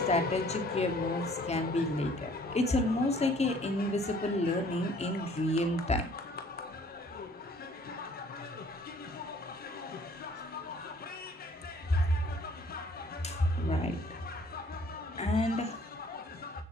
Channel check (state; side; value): normal; both; correlation 0.56